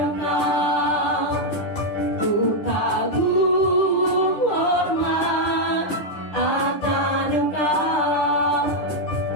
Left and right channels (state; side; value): late; right; 10 ms